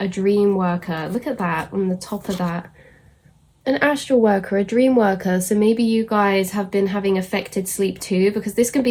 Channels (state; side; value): identical; both; correlation 1.00